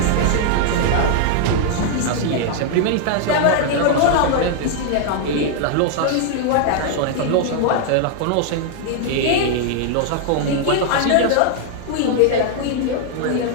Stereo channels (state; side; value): different; both; correlation 0.00